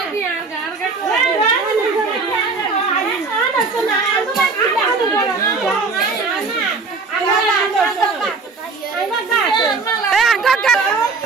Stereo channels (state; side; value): quieter; left; 4.2 dB